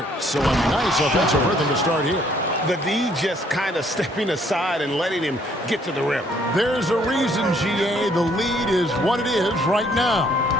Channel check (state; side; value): normal; both; correlation 0.65